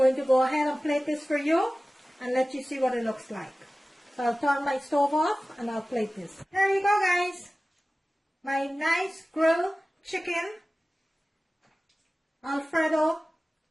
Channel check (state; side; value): normal; both; correlation 0.97